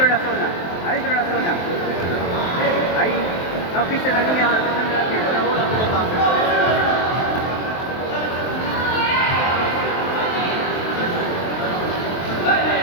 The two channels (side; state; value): right; late; 23 ms